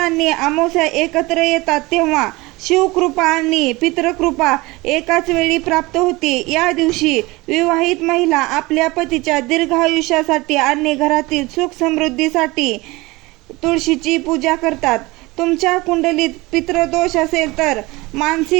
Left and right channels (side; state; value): left; quieter; 22.0 dB